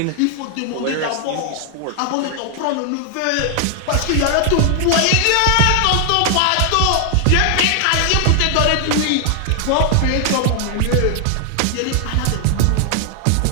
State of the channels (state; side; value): different; both; correlation 0.00